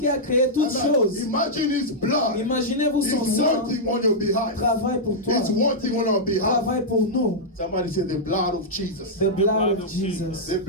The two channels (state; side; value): normal; both; correlation -0.08